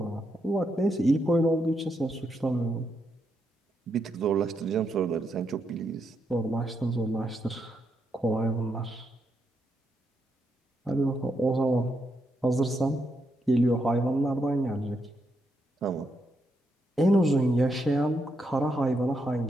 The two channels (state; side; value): normal; both; correlation 0.81